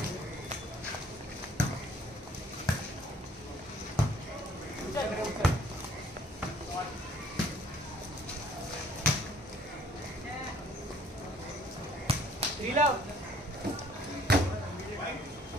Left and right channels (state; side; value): normal; both; correlation 0.59